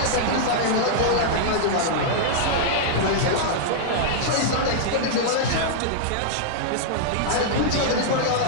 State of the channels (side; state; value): both; different; correlation -0.01